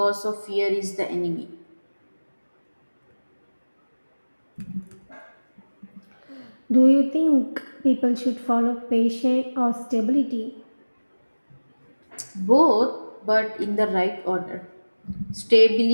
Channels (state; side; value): inverted; both; correlation -1.00